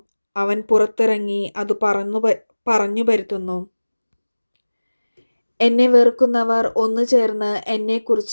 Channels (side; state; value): both; inverted; correlation -1.00